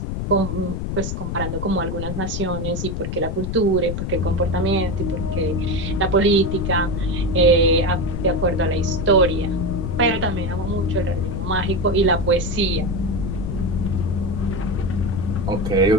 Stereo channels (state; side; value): noise; left; rumble, 3 dB below the sound